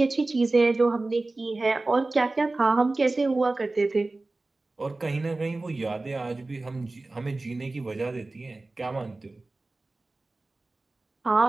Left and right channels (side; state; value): left; quieter; 3.1 dB